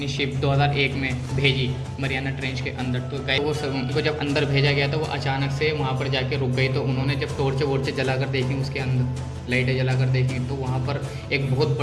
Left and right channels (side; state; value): both; identical; correlation 1.00